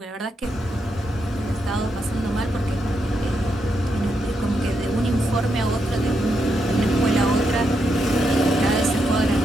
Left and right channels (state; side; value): normal; both; correlation 0.81